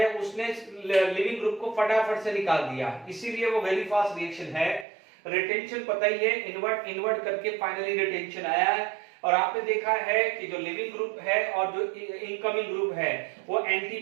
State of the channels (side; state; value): left; drops out; at 4.9 s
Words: उसने लिविंग ग्रुप को फटाफट से निकाल दिया, इसीलिए वो वेरी फास्ट रिएक्शन है। रिटेंशन पता ही है, इन्वर्ट करके फाइनली रिटेंशन आया है, और आपने देखा है कि जो लिविंग ग्रुप है और जो इनकमिंग ग्रुप है वो एंटी